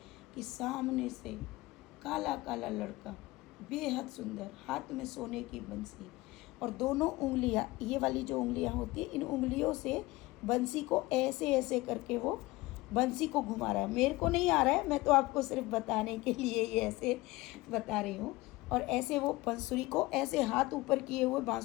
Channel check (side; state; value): right; quieter; 20.4 dB